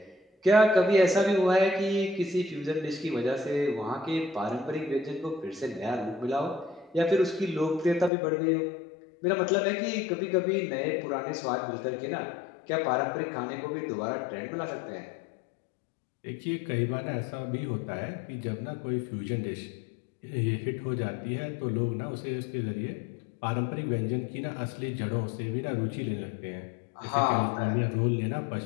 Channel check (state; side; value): drops out; right; at 8.1 s